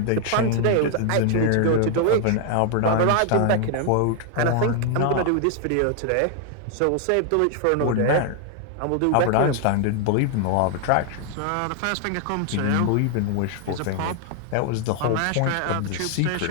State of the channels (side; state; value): both; different; correlation 0.00